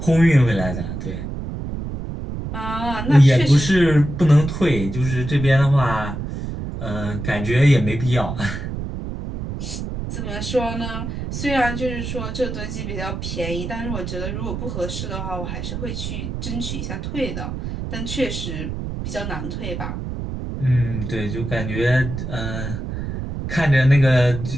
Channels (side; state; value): right; noise; rumble, 6 dB below the sound